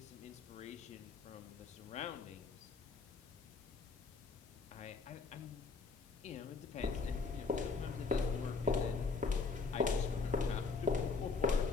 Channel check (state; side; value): quieter; right; 4.5 dB